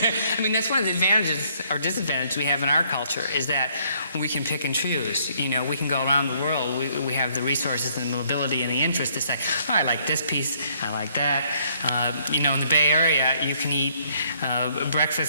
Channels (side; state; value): both; inverted; correlation -0.67